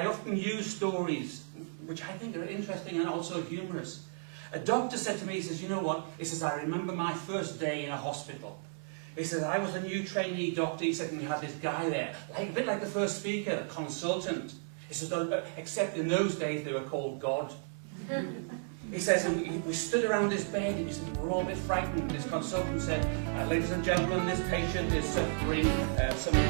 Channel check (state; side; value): silent; left; 55 dB below the other